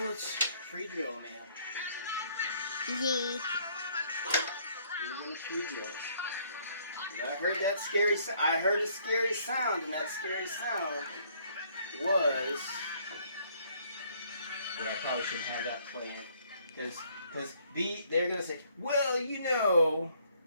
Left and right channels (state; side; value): inverted; both; correlation -0.64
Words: let's pre-drill, man. Yeah. We're gonna pre-drill. I heard that scary. I heard a scary sound, and that scary sound was. Yeah, I probably shouldn't have that playing, because they're gonna say, well, you know,